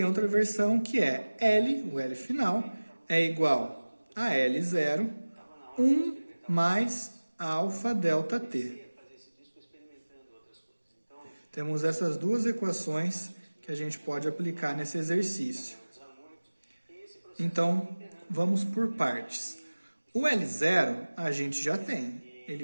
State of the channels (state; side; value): inverted; both; correlation -1.00